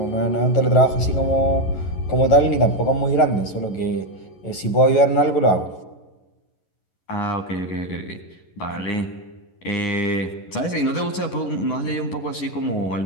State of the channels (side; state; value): right; late; 11 ms